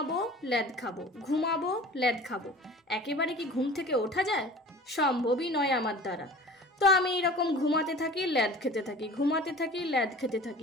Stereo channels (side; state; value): both; normal; correlation 0.42